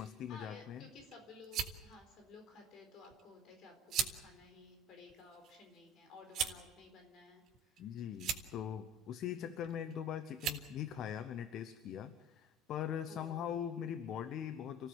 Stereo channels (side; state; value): both; normal; correlation 0.43